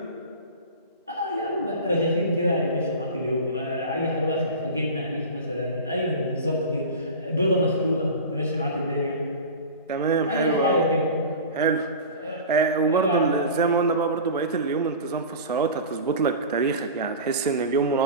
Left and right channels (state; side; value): inverted; both; correlation -0.32